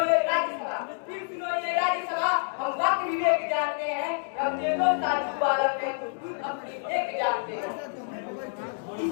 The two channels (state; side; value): silent; right; 59 dB below the other